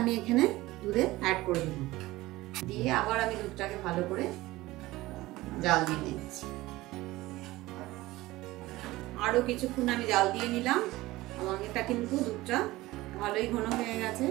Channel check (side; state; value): left; quieter; 18.6 dB